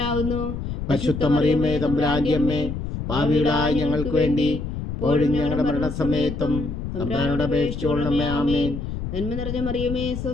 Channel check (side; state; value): left; noise; rumble, 5 dB below the sound